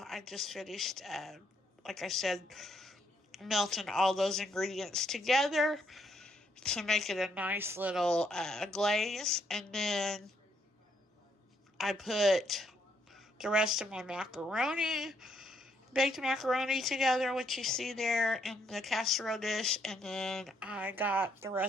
I just finished, like I said, melting all those ingredients together to make it a nice little glaze. And then I put the rest of my baked macaroni together, which you see there in the casserole dish. And then I got the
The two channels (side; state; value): both; normal; correlation 0.73